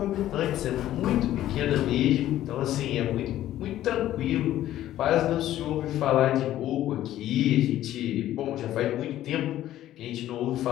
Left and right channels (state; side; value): quieter; right; 13.2 dB